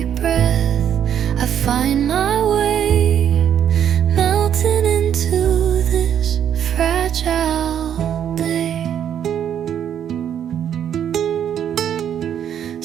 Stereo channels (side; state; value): left; quieter; 9.4 dB